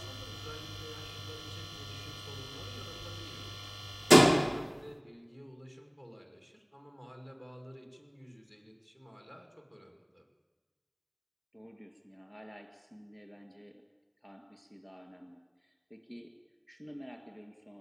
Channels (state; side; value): identical; both; correlation 1.00